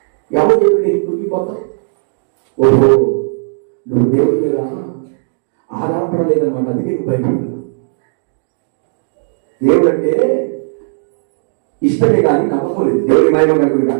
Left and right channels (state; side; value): silent; left; digital silence